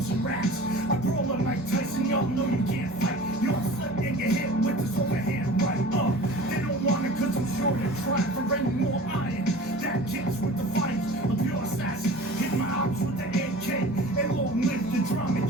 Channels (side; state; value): both; normal; correlation 0.40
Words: MC raps. I brawl like Mike Tyson, y'all know you can't fight. Y'all slip and get hit with this overhand right. They don't want it cause I'm sure they're trying for any more iron. That kicks with the fight, a pure assassin. Hit my ops with the AK, and long live the drama